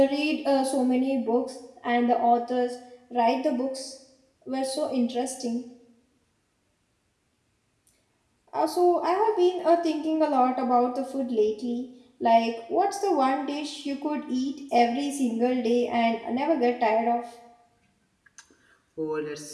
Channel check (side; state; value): both; identical; correlation 1.00